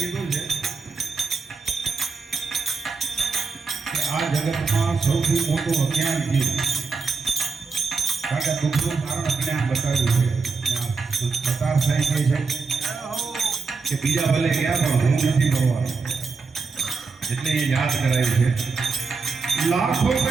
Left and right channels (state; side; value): quieter; left; 4.6 dB